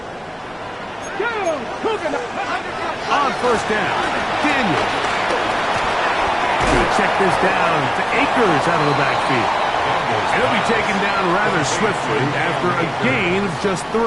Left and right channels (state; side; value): identical; both; correlation 1.00